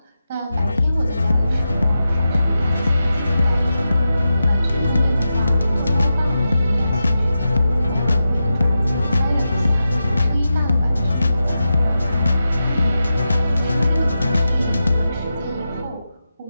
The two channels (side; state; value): both; inverted; correlation -0.90